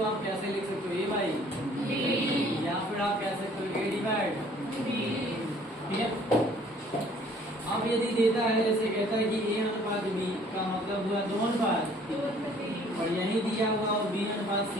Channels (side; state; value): both; normal; correlation 0.57